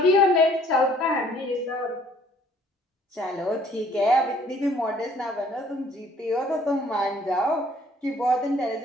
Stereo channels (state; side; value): normal; both; correlation 0.59